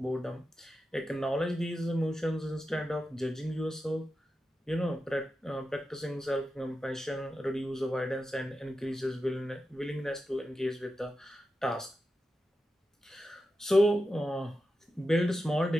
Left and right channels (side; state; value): both; normal; correlation 0.90